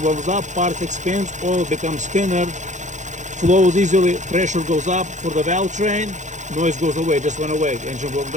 warms up, parts expands, oil becomes thinner, flows easily, pressure goes up for the valve train, noise goes away, just went away, engine warmed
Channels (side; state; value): left; late; 0.35 ms